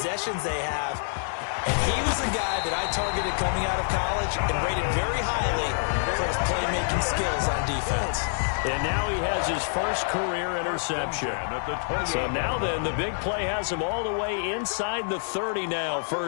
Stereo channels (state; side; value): silent; right; digital silence